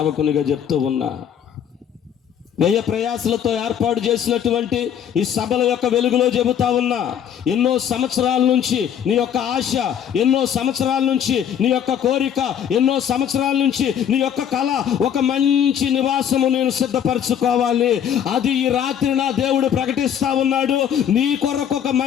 చెప్తూ ఉన్నా, వ్యయ ప్రయాసలతో ఏర్పాటు చేసినటువంటి ఈ సభల యొక్క వెలుగులో చెబుతా ఉన్నా, ఎన్నో సంవత్సరాల నుంచి నీ యొక్క ఆశ, ఎన్నో సంవత్సరాల నుంచి నీ యొక్క కోరిక, ఎన్నో సంవత్సరాల నుంచి నీ యొక్క కళ, ఒక మంచి నివాసము నేను సిద్ధపరచుకోవాలి. అది ఈ రాత్రి నా దేవుడు ప్రకటిస్తా ఉన్నాడు. నీ కొరకు ఒక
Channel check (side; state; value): right; quieter; 9.1 dB